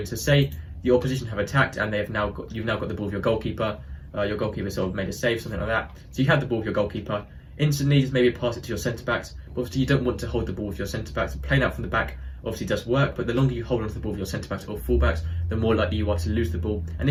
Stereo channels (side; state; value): both; identical; correlation 1.00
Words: So say the opposition have attacked and you've now got the ball with your goalkeeper. Your goalkeeper sort of made a save, something like that. So you have the ball with your goalkeeper. Instantly just maybe pass it to your centre backs. But obviously you don't want to hold the ball with your centre backs. Playing out from the back obviously does work, but the longer you hold on to the ball with your centre backs or full backs, the more likely you are to lose the ball. And